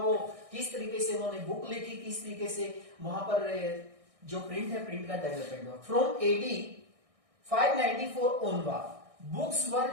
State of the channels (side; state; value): left; late; 1.6 ms